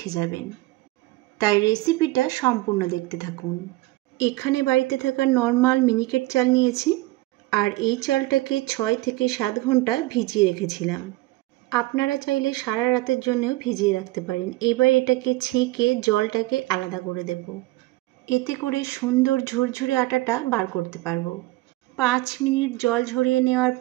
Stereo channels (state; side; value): quieter; left; 19.3 dB